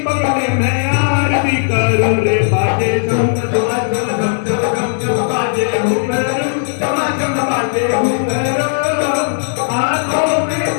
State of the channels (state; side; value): silent; right; digital silence